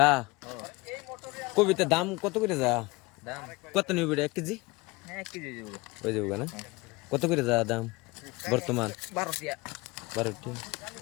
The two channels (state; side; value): quieter; right; 23.1 dB